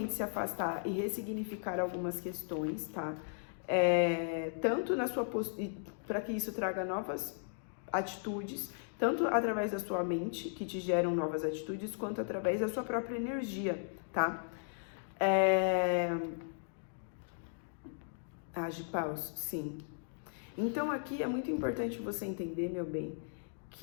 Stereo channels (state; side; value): silent; right; digital silence